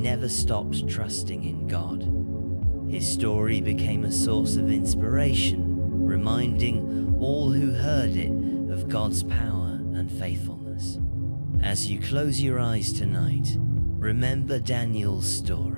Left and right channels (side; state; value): both; inverted; correlation -1.00